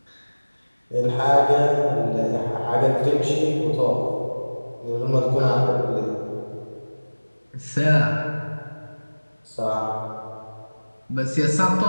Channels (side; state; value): both; inverted; correlation -1.00